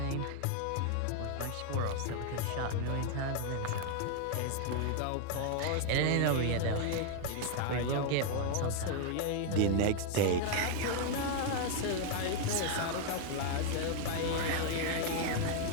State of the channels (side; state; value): both; different; correlation 0.00